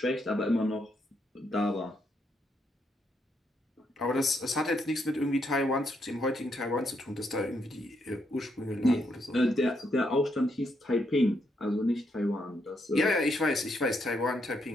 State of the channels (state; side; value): normal; both; correlation 0.77